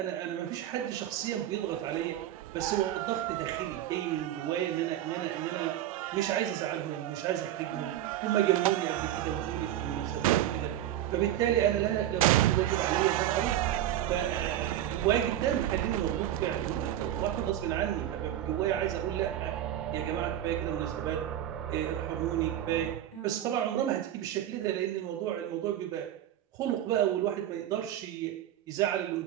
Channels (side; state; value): left; quieter; 12.2 dB